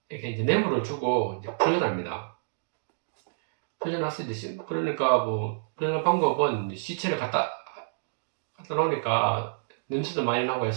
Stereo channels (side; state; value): left; silent; digital silence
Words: 이렇게 이제 뇌물을 주고 이제 풀려납니다. 풀려났을 때 그러니까 뭐 풀려난 방법은 시체를 갖다 놓으니까 냄새도 많이 나고